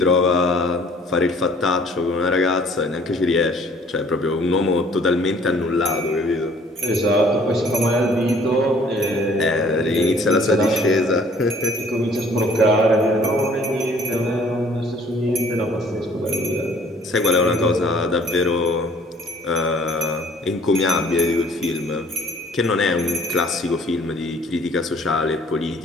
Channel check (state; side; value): normal; both; correlation 0.56